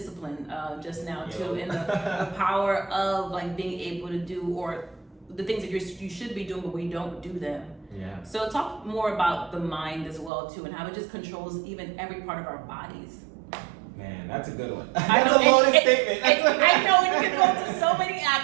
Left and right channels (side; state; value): left; drops out; at 10.3 s